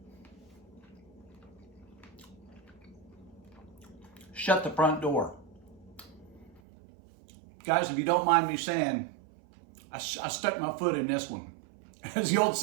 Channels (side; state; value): left; drops out; at 6.6 s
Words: Shut the front door. Guys, if you don't mind me saying, I stuck my foot in this one. As the old